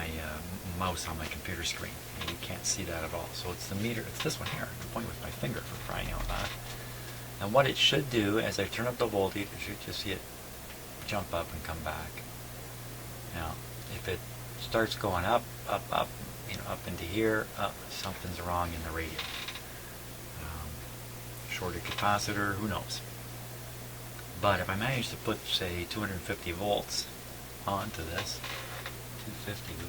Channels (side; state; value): both; identical; correlation 1.00